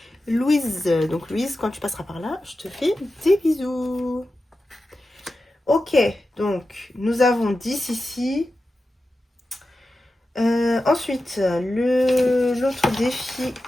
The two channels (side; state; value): both; normal; correlation 0.92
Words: Louise. Donc Louise, quand tu passeras par là, je te fais des bisous. Ok, donc nous avons 10 ici. Ensuite, l'autre défi,